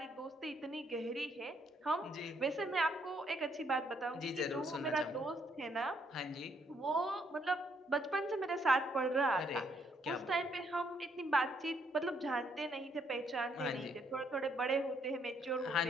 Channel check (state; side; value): normal; both; correlation 0.71